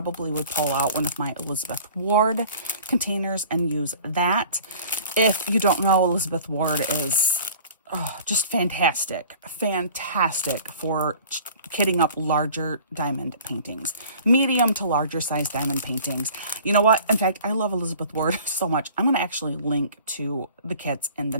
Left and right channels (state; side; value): inverted; both; correlation -0.46